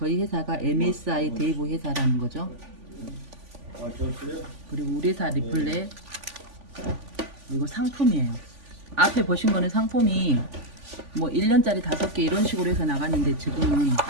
회사가 MSI 대부 회사라는 거죠. 그리고 우리 회사 리플렛, 이거 상품이에요. 앞에 보신 거는 상품이 뭐 1년짜리 5개 이런 식으로 해서 나갔는데, 지금은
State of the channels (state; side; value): late; left; 3.5 ms